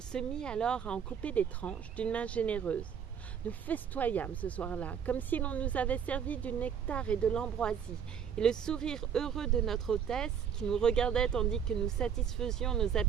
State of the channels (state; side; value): quieter; left; 7.8 dB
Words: se mit alors à en couper des tranches d'une main généreuse. Nous festoyâmes ce soir-là, comme si l'on nous avait servi du nectar et de l'ambroisie, et le sourire heureux de notre hôtesse, qui nous regardait tandis que nous satisfaisions nos